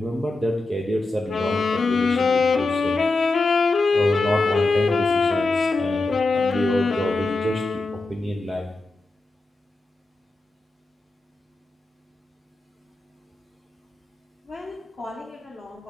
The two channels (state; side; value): quieter; right; 3.2 dB